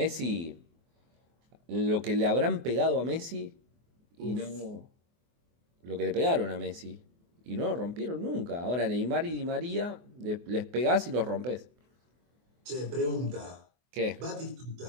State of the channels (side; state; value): left; late; 24 ms